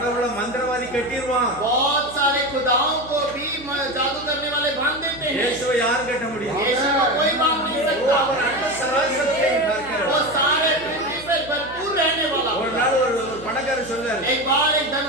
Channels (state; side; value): noise; right; hum, 18 dB below the sound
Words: மந்திரவாதி கட்டிடுவான். बहुत सारे खुदाओं को भी जादू करने वाले बांध देते हैं। இயேசுவை யார் கட்ட முடியும்? यीशु को कोई बांध नहीं அவர் सकता। அண்ட சராசரத்தையும் பார்க்கிறவர். वो सारे पृथ्वी पर भरपूर रहने वाला। ஒரு நாள் ஒரு பணக்காரர் சொல்றாரு, एक बार एक